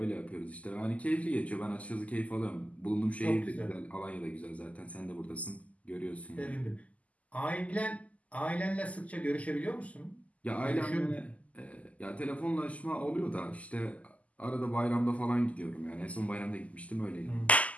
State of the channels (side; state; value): right; late; 0.070 ms